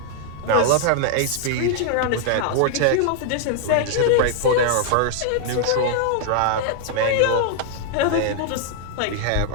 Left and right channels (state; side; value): different; both; correlation 0.00